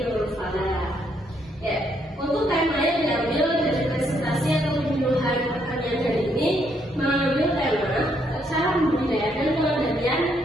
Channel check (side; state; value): both; normal; correlation 0.73